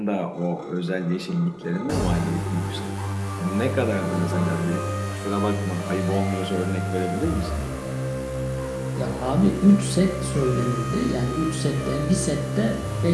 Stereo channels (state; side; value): identical; both; correlation 1.00